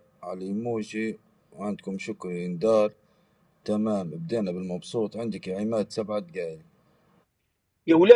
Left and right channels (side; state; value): both; identical; correlation 1.00